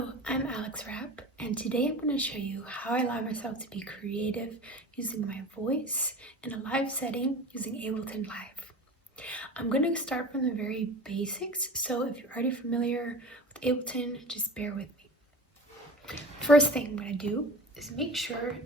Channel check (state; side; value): normal; both; correlation 0.35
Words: I'm Rapp, and today I'm going to show you how I allow myself to be creative using my voice in a live setting using Ableton Live. I'm going to start from the very basics, so if you're already familiar with Ableton, just bear with me. First thing I'm going to do is make sure